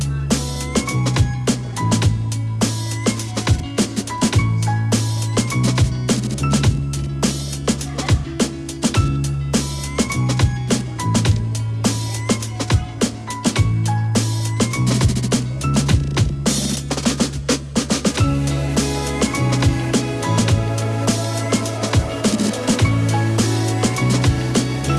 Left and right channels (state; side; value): identical; both; correlation 1.00